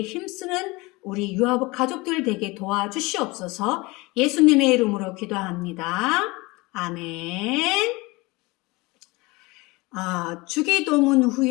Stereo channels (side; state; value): right; quieter; 23.7 dB